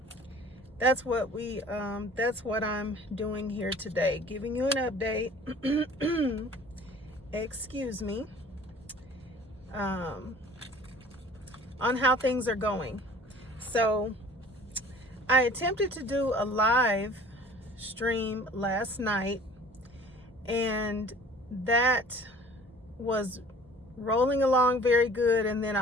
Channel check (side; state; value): both; normal; correlation 0.48